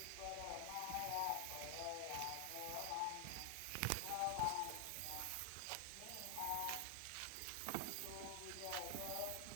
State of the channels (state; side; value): different; both; correlation 0.00